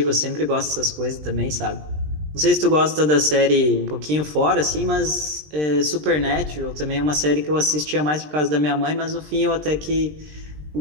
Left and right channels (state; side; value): late; left; 20 ms